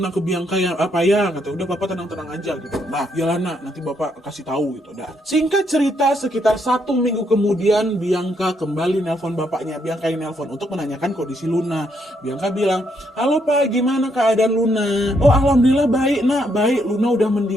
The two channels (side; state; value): both; normal; correlation 0.75